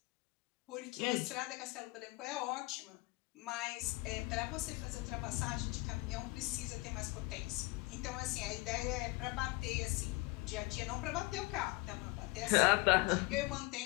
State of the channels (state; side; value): quieter; right; 23.4 dB